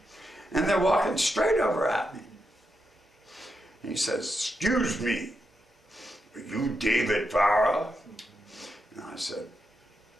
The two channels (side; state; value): both; normal; correlation 0.85